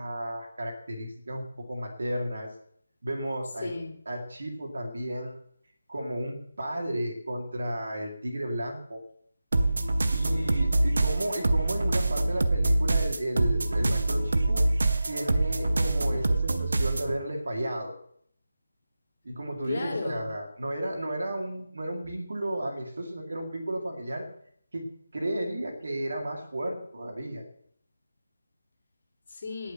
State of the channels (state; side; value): inverted; both; correlation -0.94